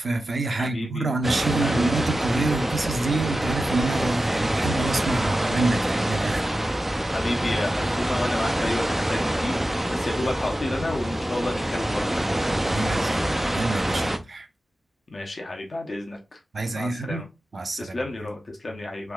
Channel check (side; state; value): both; normal; correlation 0.93